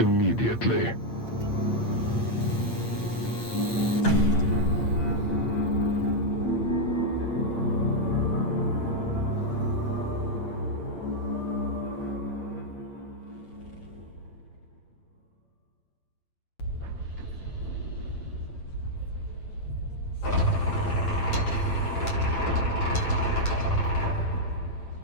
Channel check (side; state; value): right; late; 8.7 ms